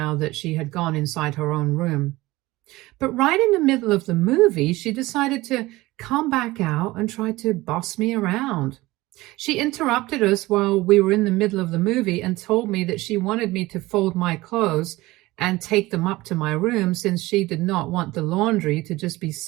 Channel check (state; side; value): quieter; left; 19.4 dB